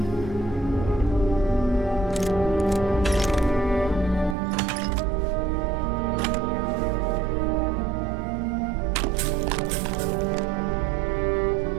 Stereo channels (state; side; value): drops out; left; at 4.4 s